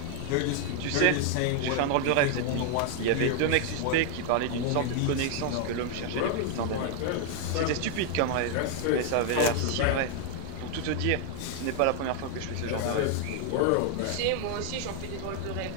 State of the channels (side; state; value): both; different; correlation 0.00